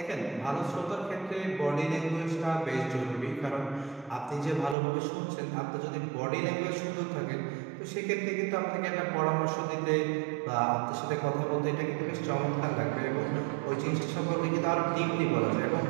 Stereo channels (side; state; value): left; drops out; at 4.8 s